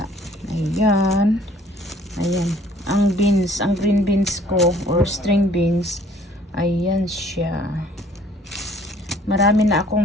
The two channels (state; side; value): normal; both; correlation 0.57